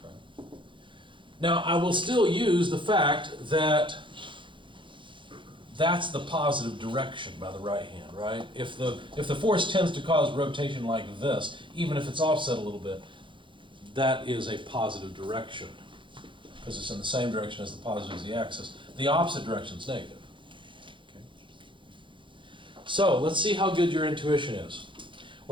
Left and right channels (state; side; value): late; left; 0.24 ms